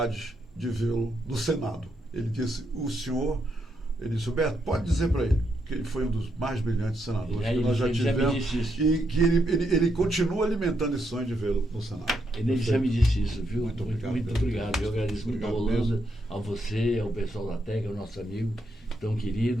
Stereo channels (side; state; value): both; normal; correlation 0.79